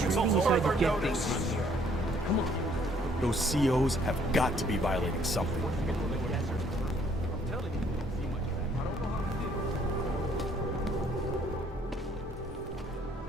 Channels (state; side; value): normal; both; correlation 0.63